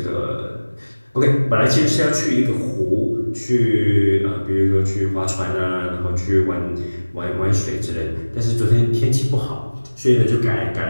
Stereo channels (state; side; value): inverted; both; correlation -1.00